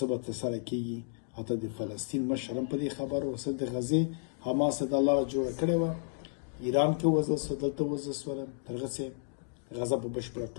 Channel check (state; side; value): silent; right; digital silence